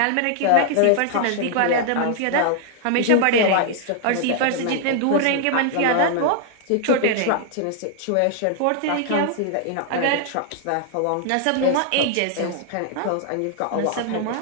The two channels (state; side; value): different; both; correlation 0.00